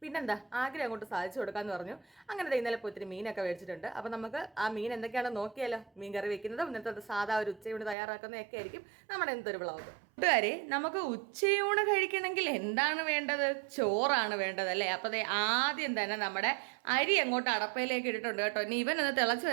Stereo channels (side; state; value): left; drops out; at 8.0 s